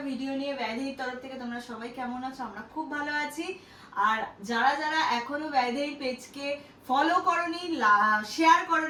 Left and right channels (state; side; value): identical; both; correlation 1.00